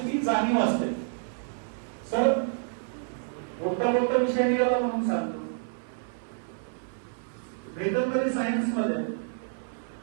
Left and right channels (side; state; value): left; silent; 59 dB below the other